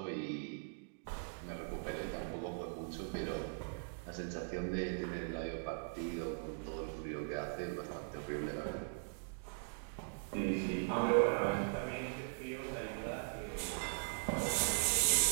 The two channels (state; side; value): silent; left; digital silence